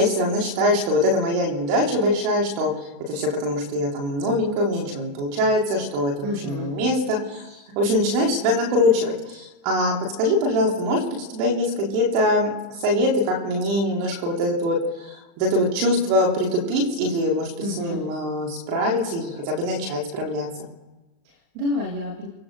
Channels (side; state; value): left; late; 35 ms